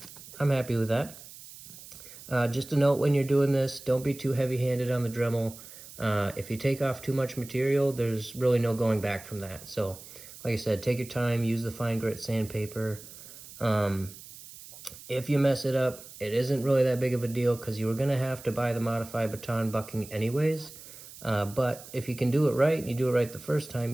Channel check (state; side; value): noise; right; hiss, 17 dB below the sound